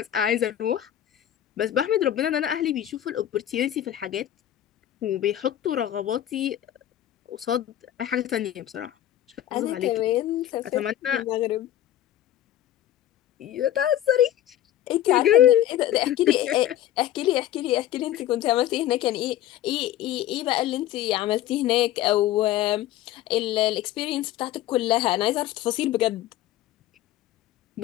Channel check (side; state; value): right; quieter; 12.4 dB